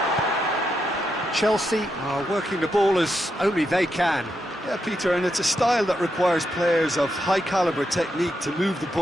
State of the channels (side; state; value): both; normal; correlation 0.83